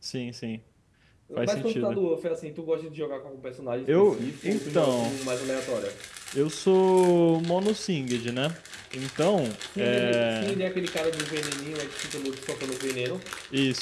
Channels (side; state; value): both; identical; correlation 1.00